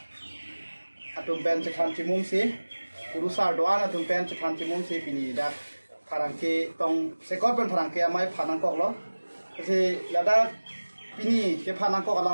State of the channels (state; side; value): inverted; both; correlation -1.00